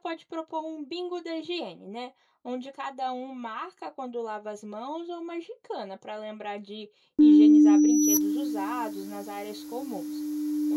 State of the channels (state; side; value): identical; both; correlation 1.00